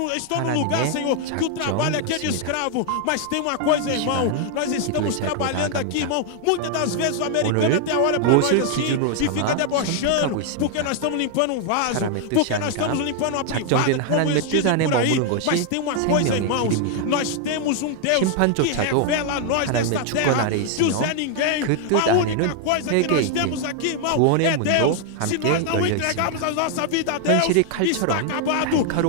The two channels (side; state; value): both; different; correlation 0.00